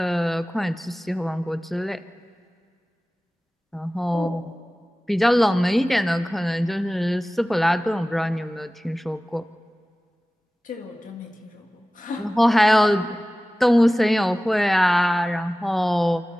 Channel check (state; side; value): normal; both; correlation 0.97